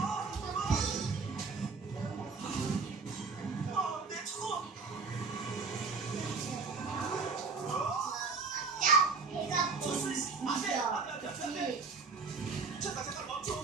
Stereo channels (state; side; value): quieter; left; 4.5 dB